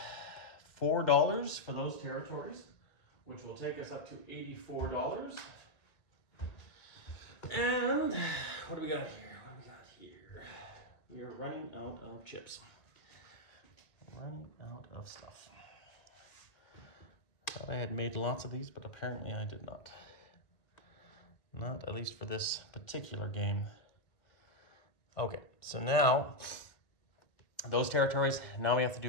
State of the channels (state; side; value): late; right; 1.9 ms